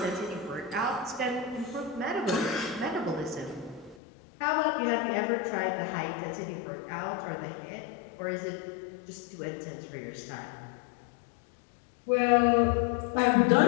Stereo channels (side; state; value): right; drops out; at 4.0 s